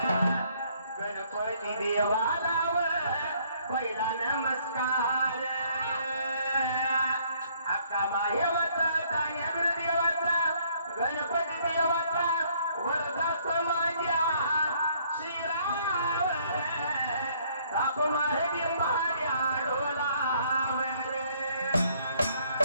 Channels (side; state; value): both; inverted; correlation -0.64